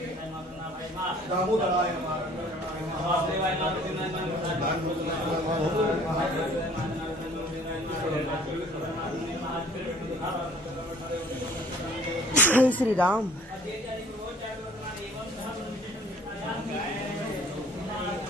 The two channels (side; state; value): both; normal; correlation 0.53